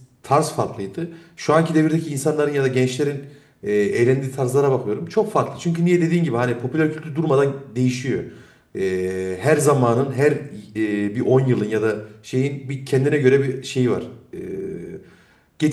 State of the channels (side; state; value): both; identical; correlation 1.00